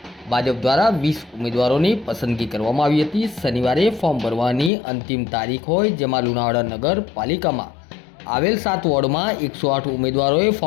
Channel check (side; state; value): right; drops out; at 4.7 s